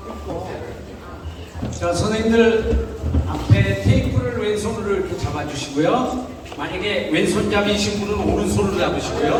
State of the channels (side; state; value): both; identical; correlation 1.00